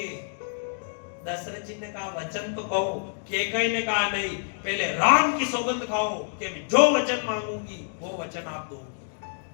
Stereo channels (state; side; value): silent; right; digital silence